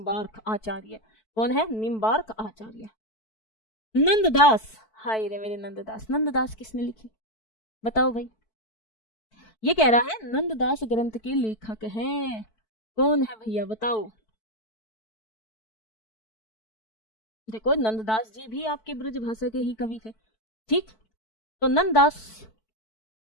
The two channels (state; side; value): late; right; 4.6 ms